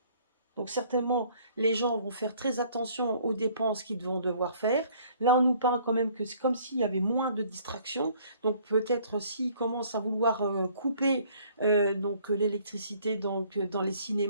Donc certainement, les gens vont faire très attention aux dépenses qu'ils vont devoir faire. Là, on nous parle quand même que c'est comme s'il y avait moins de distractions. Donc peut-être s'ils commencent à vouloir couper l'électricité dans les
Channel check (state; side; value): inverted; both; correlation -0.59